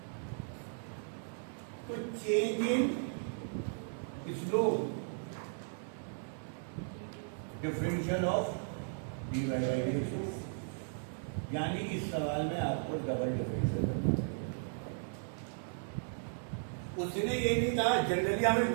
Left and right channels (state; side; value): silent; left; 54 dB below the other